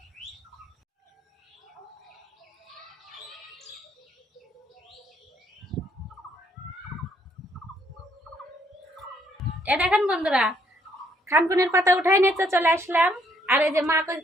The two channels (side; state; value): both; normal; correlation 0.69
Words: এ দেখেন বন্ধুরা, খানকুনির পাতা উঠাই নিয়ে চলে আসলাম। আর এই যে মা